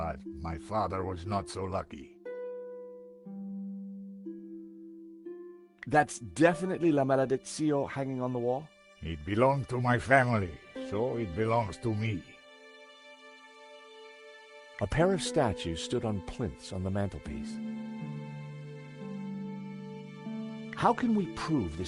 my father was not so lucky. That's definitely La Malediccio hanging on the wall? It belonged to my family, so it belongs to me. A pair of statues stood on plinths on the mantelpiece. How can we prove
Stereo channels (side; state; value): both; identical; correlation 1.00